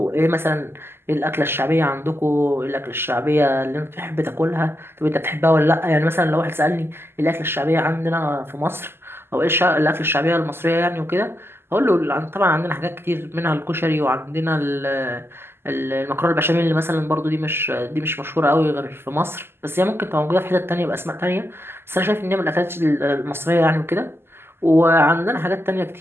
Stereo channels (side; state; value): left; late; 0.12 ms